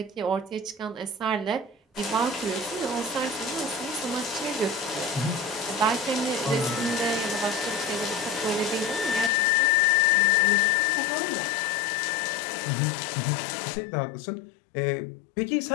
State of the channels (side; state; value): right; drops out; at 9.3 s